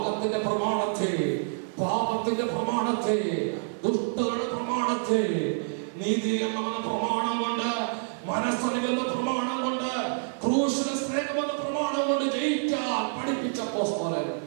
പ്രമാണത്തെ, പാപത്തിന്റെ പ്രമാണത്തെ, ദുഷ്ടതയുടെ പ്രമാണത്തെ, നീതി എന്ന പ്രമാണം കൊണ്ട്, മനസ്സറിവെന്ന പ്രമാണം കൊണ്ട്, ക്രൂശിലെ സ്നേഹമെന്ന പ്രമാണം കൊണ്ട് ജയിക്കാൻ പഠിപ്പിച്ച അപ്പോസ്തലൻ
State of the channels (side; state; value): left; silent; 59 dB below the other